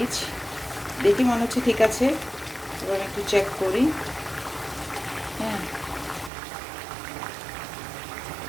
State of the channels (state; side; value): drops out; left; at 6.3 s